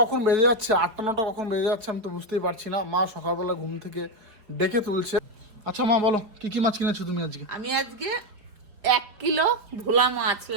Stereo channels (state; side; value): late; left; 4.9 ms